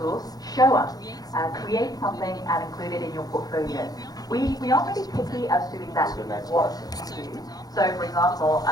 show us. Create something and include it in your portfolio. We aren't really picky as to exactly what you do. So for example,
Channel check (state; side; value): late; right; 0.19 ms